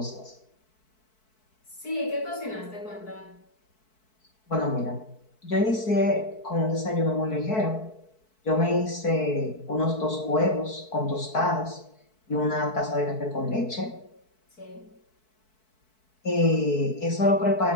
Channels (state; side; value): late; right; 4.6 ms